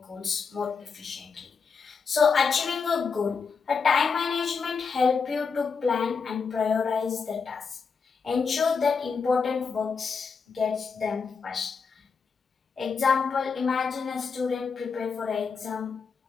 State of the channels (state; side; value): quieter; right; 5.5 dB